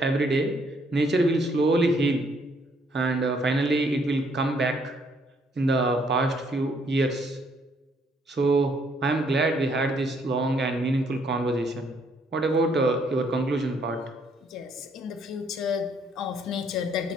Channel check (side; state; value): both; normal; correlation 0.68